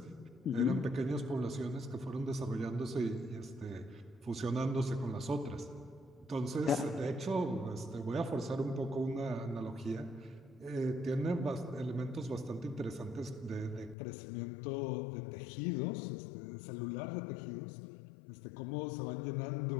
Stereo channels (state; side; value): drops out; right; at 14.0 s